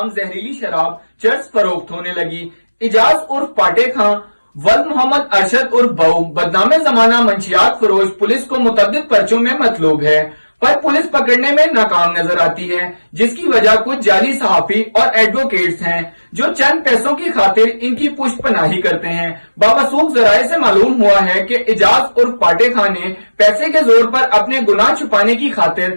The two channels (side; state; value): both; inverted; correlation -1.00